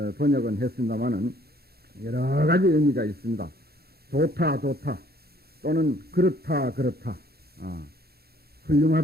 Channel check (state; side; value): late; left; 0.46 ms